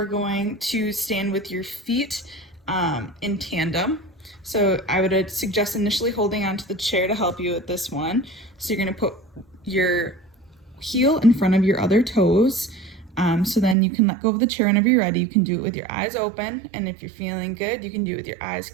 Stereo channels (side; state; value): left; drops out; at 13.8 s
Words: going to stand with your feet in tandem. So I would suggest initially holding onto the chair to help you with this one. So you're gonna put your heel in front of your other toes. So then you can let go of the chair whenever you're ready. You can do it with your eyes open, and if you're feeling good, you can do it with your eyes